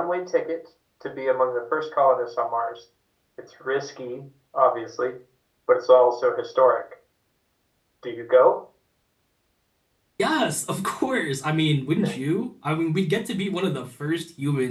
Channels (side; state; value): both; identical; correlation 1.00